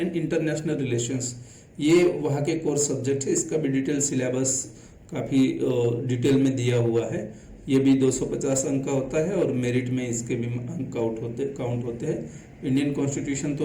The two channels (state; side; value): identical; both; correlation 1.00